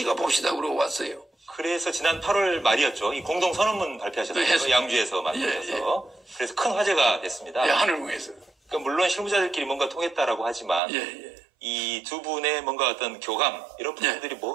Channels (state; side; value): drops out; left; at 10.8 s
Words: 봅시다 그러고 왔어요. 그래서 지난 8월 말이었죠. 이 공동 선언문 발표하셨어요. 네, 양주에서 만나서. 그래서 큰 화제가 됐습니다. 네, 하늘궁에서. 그러니까 물론 실무자들끼리 뭔가 통했다라고 하지만 이 두 분의 뭔가 어떤 교감 이런 부분들이